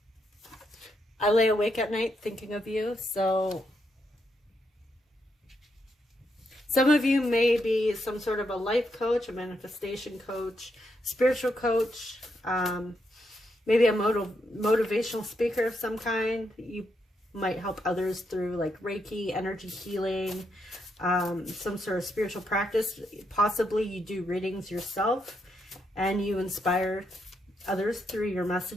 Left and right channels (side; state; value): both; normal; correlation 0.80